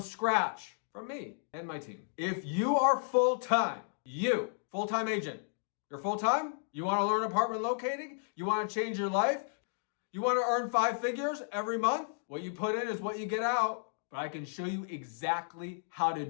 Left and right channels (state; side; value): silent; right; digital silence